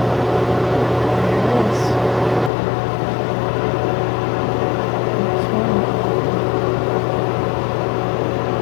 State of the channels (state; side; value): drops out; right; at 2.5 s